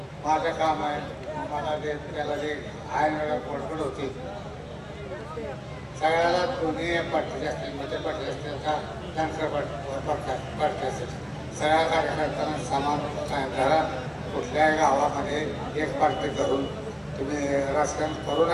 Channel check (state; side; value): identical; both; correlation 1.00